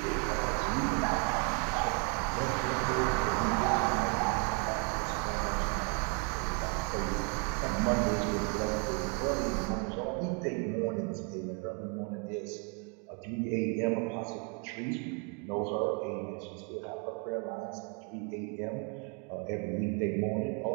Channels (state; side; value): quieter; left; 35.5 dB